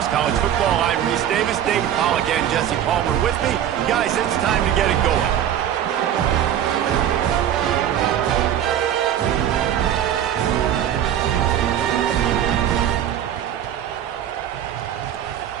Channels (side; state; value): left; quieter; 10.4 dB